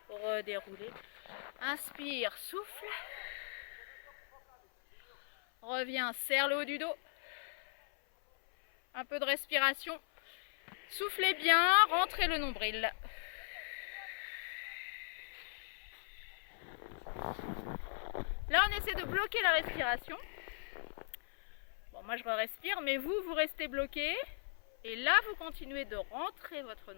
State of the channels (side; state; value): right; silent; 52 dB below the other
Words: Redérouler. Inspire, souffle. Reviens, serre le haut du dos. Un peu de respiration. Soufflez bien, rentrez le nombril. Là, on essaie de bloquer la respiration. Bon, moi, je respire, mais vous restez bloqué. Et là, vous continuez de rentrer votre